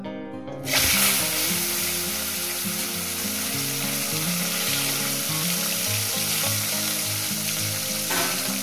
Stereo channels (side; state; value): both; identical; correlation 1.00